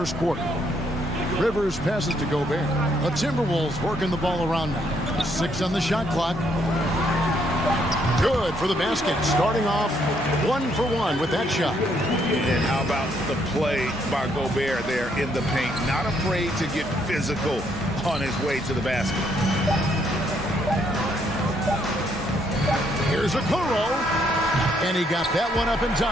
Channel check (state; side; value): normal; both; correlation 0.71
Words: quarter. Rivers passes to Gobert. The Timberwolves working the ball around now. 6 on the shot clock. Good for the basket. Starting off 1 for 1 with that shot. And how about the play by Gobert there in the paint? Not afraid to get physical on his way to the basket. Here's a Kuro. And he got that one up in